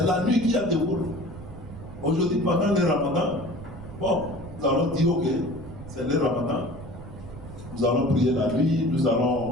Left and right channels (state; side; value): noise; right; rumble, 14 dB below the sound